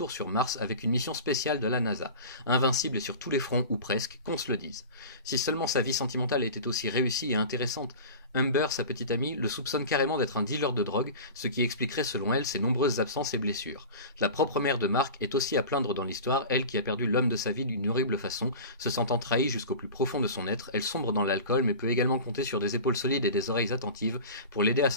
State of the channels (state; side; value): inverted; both; correlation -0.34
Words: sur Mars avec une mission spéciale de la NASA. Invincible et sur tous les fronts, ou presque, qu'on se le dise. Si seulement sa vie sentimentale était aussi réussie et intéressante, Humber, sa petite amie, le soupçonne carrément d'être un dealer de drogue, ce qui expliquerait selon elle ses nombreuses absences et blessures. La propre mère de Mark est aussi à plaindre dans l'histoire, elle qui a perdu l'homme de sa vie d'une horrible façon, se sentant trahie jusqu'au plus profond de son être, elle sombre dans l'alcool mais peut également compter sur des épaules solides et des oreilles attentives pour l'aider à